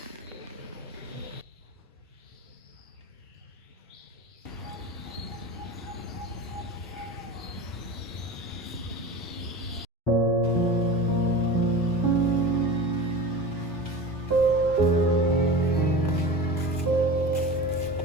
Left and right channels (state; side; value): normal; both; correlation 0.32